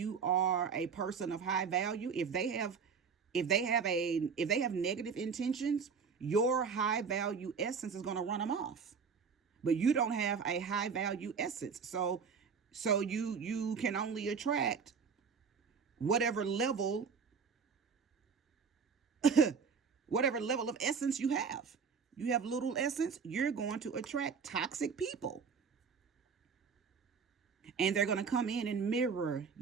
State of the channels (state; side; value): quieter; left; 5.9 dB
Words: are a person of high value, if they have negative intentions, your high value essence is going to run them off. But you don't have a high value essence, so you can only attract whatever level whatever level of essence you have. You have little essence, you're going to attract toxic people. And they're going to come in and mirror